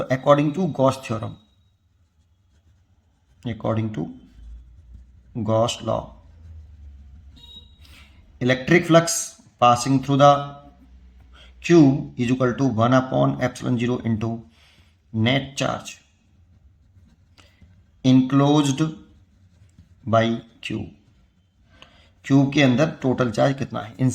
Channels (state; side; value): identical; both; correlation 1.00